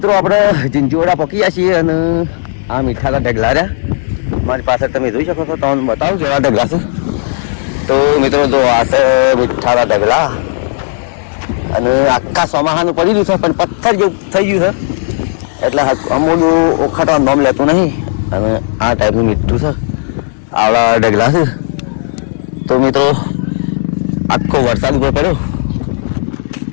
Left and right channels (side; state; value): right; silent; digital silence